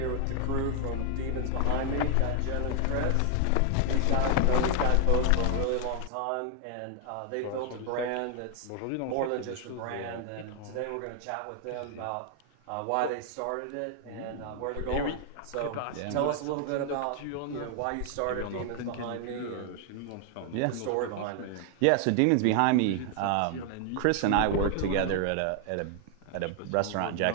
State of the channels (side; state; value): both; different; correlation 0.00